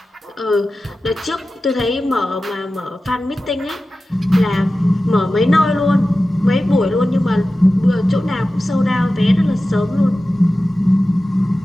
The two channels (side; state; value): both; normal; correlation 0.94